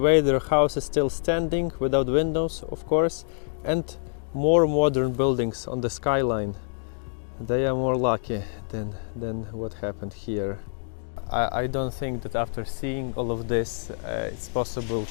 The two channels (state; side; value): silent; right; digital silence